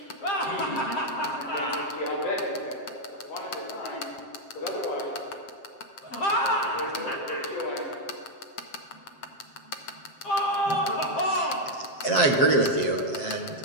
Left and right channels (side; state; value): right; late; 7.6 ms